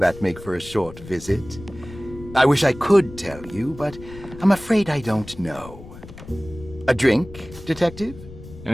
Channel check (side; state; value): left; noise; rumble, 16 dB below the sound